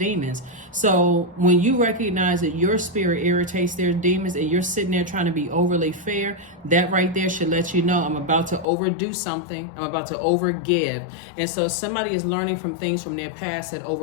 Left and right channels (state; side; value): drops out; right; at 8.7 s